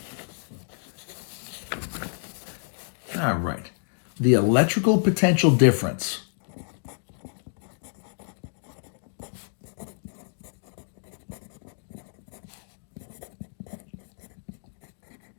All right. The electrical potential difference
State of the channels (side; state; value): right; silent; digital silence